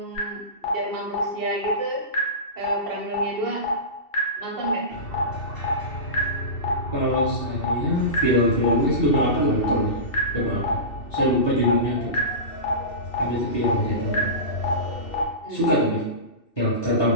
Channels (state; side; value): late; right; 2.7 ms